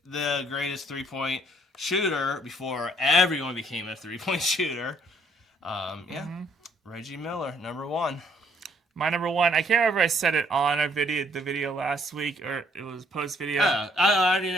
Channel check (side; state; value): both; normal; correlation 0.65